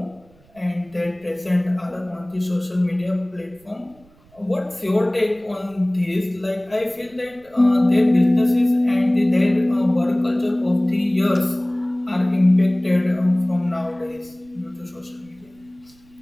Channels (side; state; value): right; noise; rumble, 29 dB below the sound